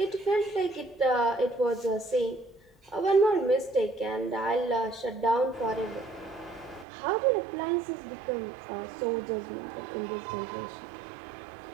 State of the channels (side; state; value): left; drops out; at 6.9 s